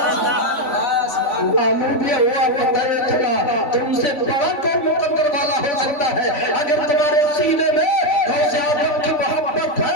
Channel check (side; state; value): right; late; 3.5 ms